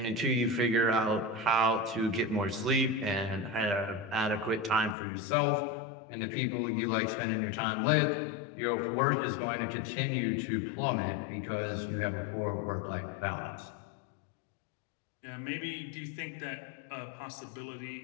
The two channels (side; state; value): right; drops out; at 5.0 s